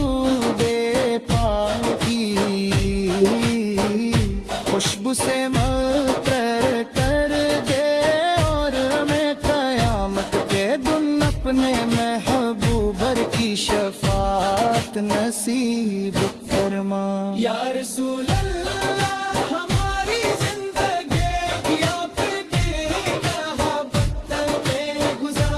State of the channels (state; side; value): identical; both; correlation 1.00